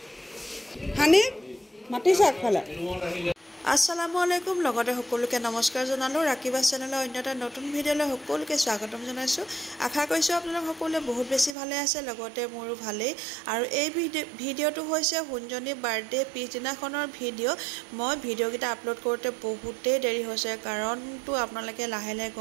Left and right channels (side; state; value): left; drops out; at 11.6 s